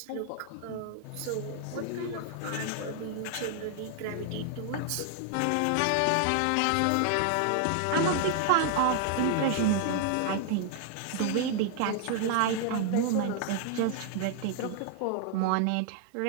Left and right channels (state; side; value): different; both; correlation 0.00